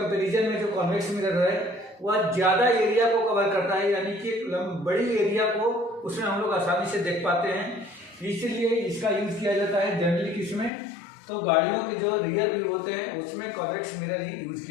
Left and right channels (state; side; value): drops out; right; at 10.7 s